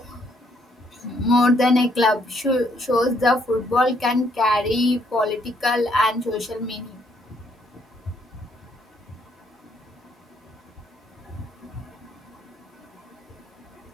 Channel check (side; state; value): both; normal; correlation 0.70